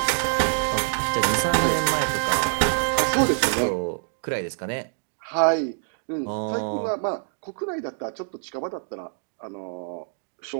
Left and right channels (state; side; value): silent; left; digital silence